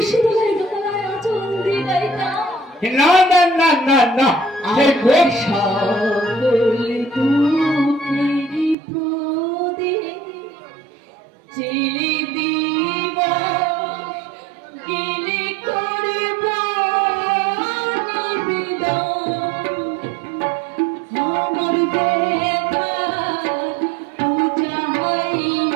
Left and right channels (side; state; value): left; drops out; at 8.8 s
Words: তলায় গলায় আঁচল দিয়ে গাইতাম। না না না না না সেই কোন সকল দুঃখেরই প্রদীপ জেলে দিব গেলে করব নিবেদন। আমার ব্যথা পূজা